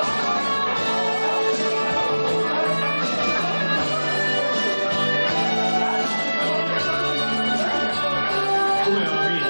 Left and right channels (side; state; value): both; inverted; correlation -1.00